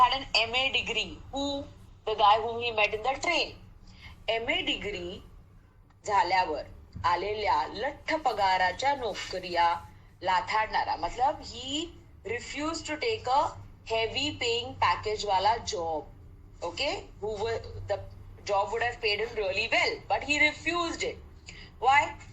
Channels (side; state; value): both; identical; correlation 1.00